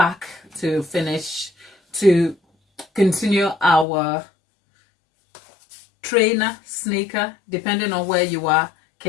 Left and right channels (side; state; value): right; drops out; at 3.9 s